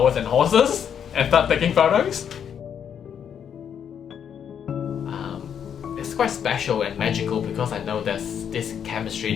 and horses and start taking photos. It's quite special and magical because I know there's this chemistry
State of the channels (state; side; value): quieter; right; 8.3 dB